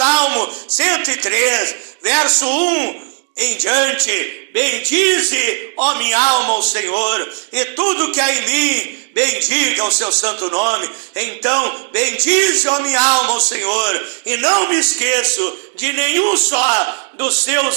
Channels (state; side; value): silent; left; digital silence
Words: 103, verso 1 em diante: bendize, ó minha alma, ao Senhor, e tudo que há em mim, bendiga o seu santo nome. Então, bendize, ó minha alma, ao Senhor, e não me esqueço de nenhum só dos